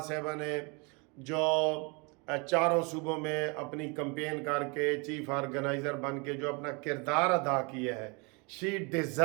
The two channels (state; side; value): quieter; left; 30.8 dB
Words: साहिबा ने जो चारों सूबों में अपनी कंपेन करके चीफ ऑर्गेनाइज़र बन के जो अपना किरदार अदा किया है, शी